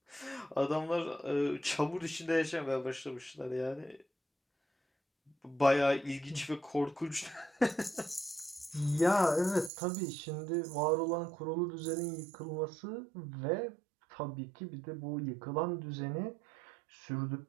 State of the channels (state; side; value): drops out; left; at 9.7 s